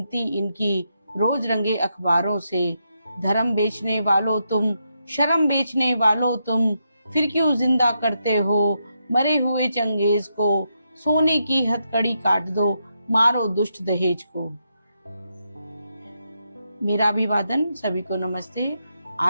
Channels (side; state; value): both; inverted; correlation -0.82